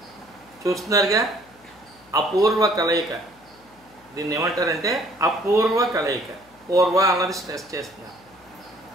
చూస్తున్నారుగా అపూర్వ కలయిక. దీన్ని ఏమంటారంటే అపూర్వ కలయిక. పూర్వ అన్నది స్ట్రెస్ చేస్తున్నాను.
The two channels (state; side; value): noise; left; hum, 29 dB below the sound